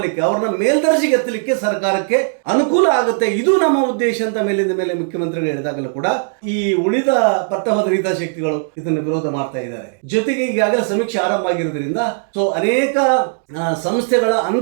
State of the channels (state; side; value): silent; left; digital silence